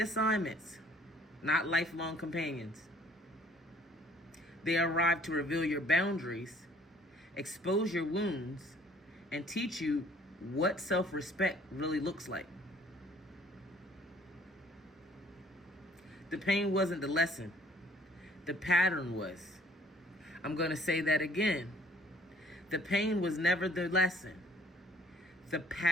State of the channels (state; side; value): normal; both; correlation 0.58